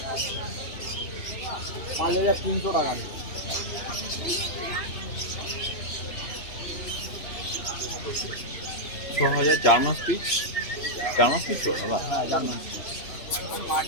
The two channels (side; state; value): right; late; 3.0 ms